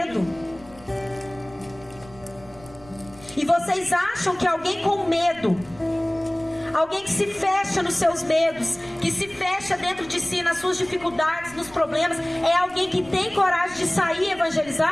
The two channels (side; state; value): right; noise; rumble, 22 dB below the sound